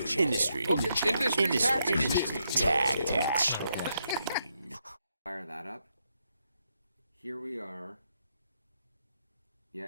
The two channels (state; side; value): inverted; both; correlation -0.79